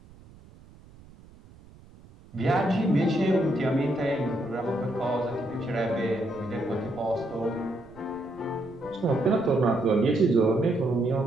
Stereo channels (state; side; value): noise; right; rumble, 23 dB below the sound